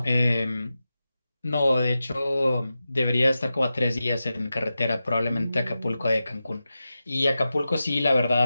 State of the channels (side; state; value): both; inverted; correlation -0.92